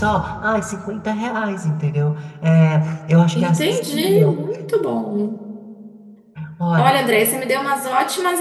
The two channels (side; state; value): both; identical; correlation 1.00